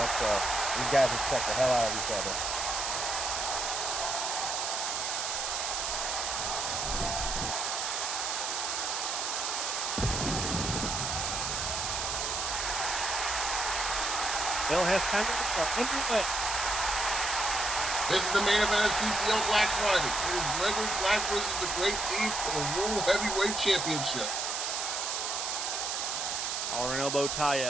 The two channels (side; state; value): right; noise; hiss, 1 dB below the sound